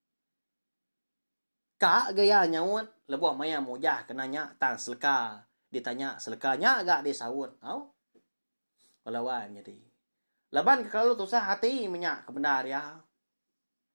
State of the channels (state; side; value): inverted; both; correlation -1.00